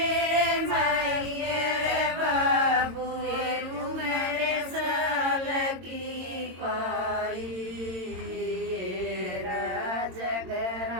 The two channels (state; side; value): late; left; 22 ms